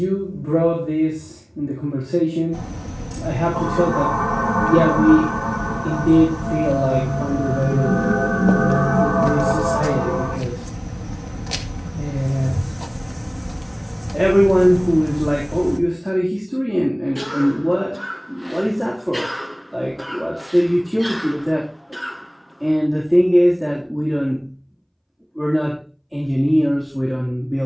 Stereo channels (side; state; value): both; identical; correlation 1.00